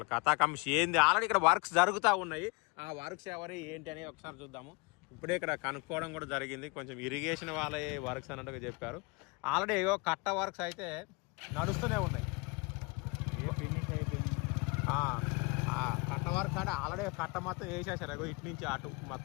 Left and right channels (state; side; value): quieter; right; 29.0 dB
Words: కథాకంశ ఏంది, ఆల్రెడీ ఇక్కడ వర్క్స్ జరుగుతూ ఉన్నాయి. ఆ వర్క్స్ ఎవరు ఏంటి అని ఒకసారి చూద్దాము. ఇప్పుడే ఇక్కడ కనుక్కోవడం కూడా జరిగింది. కొంచెం ఇరిగేషన్ వాళ్ళే వర్క్స్ అన్నట్టుగా చెప్పారు. ఆల్రెడీ ఏవో కట్ట వర్క్స్ అయితే నడుస్తూనే ఉన్నాయి. కట్ట వర్క్స్ అంటే ఆల్రెడీ కట్ట మొత్తం వేసేసారు. ఇటు నుంచి అటు